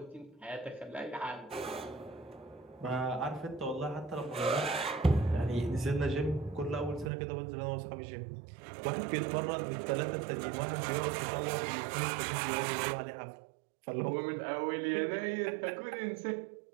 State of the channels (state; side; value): drops out; left; at 7.1 s